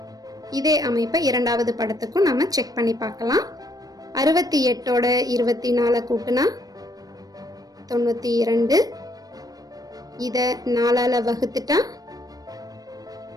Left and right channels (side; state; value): left; late; 0.18 ms